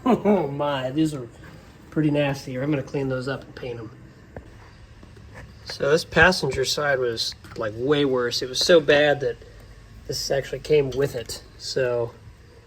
Oh my, these are pretty nasty. I'm gonna clean those up and paint them. So this passenger side was like way worse. It was so bad that this actually came with it. So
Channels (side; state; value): both; identical; correlation 1.00